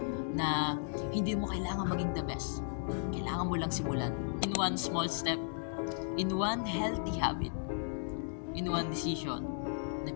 Na hindi mo kailangan maging the best. Kailangan mo lang simulan. In one small step, in one healthy habit, in one decision,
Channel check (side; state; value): right; silent; digital silence